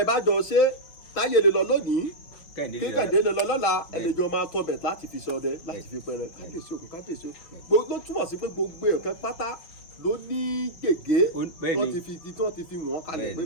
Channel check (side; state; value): right; late; 6.0 ms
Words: ẹ bá jọ ṣe táyé lè lọ lónìí kékàdé lè lọ lọ́la ẹlẹ́jọ́ máa tọbẹ̀ láti fi ṣọdẹ láti fi pẹrẹ kábíyèsí òkun kábíyèsí òkun ló túmọ̀ sí pé gbogbo ẹ̀kẹ́ pátá ló ní gègé tí wọ́n ti fi wọ́n kalẹ̀ pé